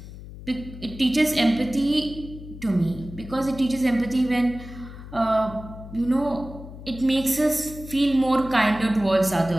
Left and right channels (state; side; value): noise; left; hum, 14 dB below the sound